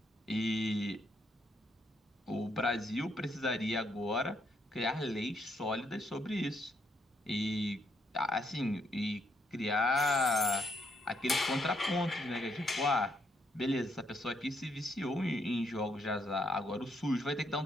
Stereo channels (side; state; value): both; normal; correlation 0.75